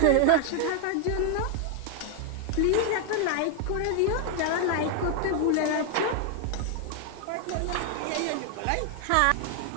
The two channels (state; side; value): different; both; correlation 0.00